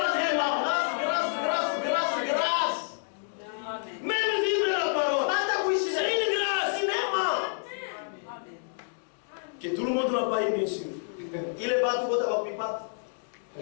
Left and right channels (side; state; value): right; silent; digital silence